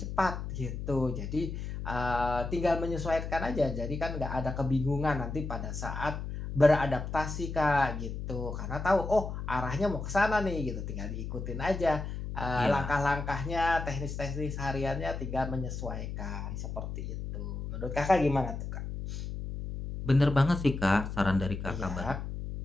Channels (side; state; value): left; noise; hum, 6 dB below the sound